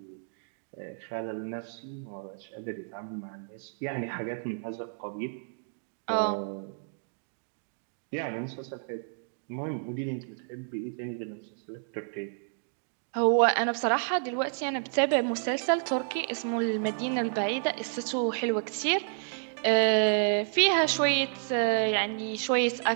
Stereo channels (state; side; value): silent; left; digital silence